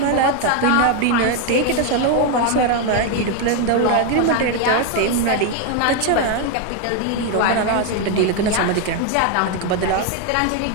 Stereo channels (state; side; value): different; both; correlation 0.01